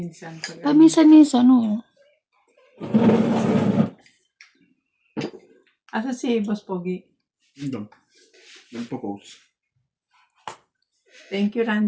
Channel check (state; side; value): identical; both; correlation 1.00